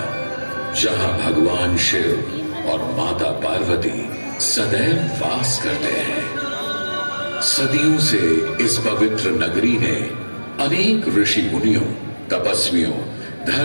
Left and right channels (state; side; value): inverted; both; correlation -1.00